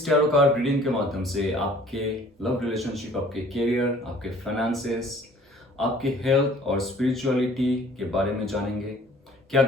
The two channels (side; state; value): both; normal; correlation 0.53